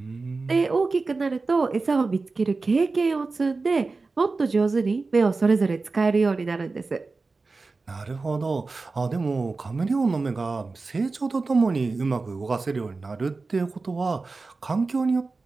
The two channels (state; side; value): quieter; left; 3.9 dB